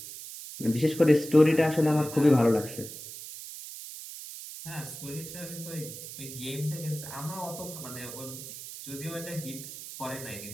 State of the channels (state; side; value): noise; right; hiss, 11 dB below the sound